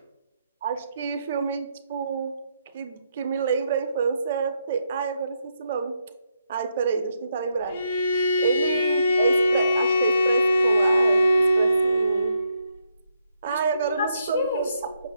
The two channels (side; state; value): both; inverted; correlation -0.79